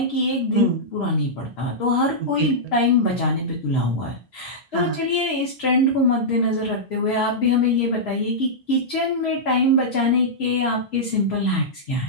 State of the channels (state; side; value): normal; both; correlation -0.11